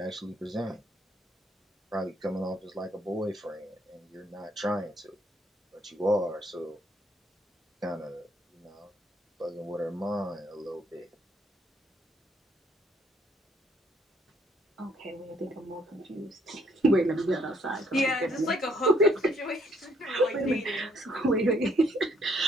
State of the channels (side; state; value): both; normal; correlation 0.68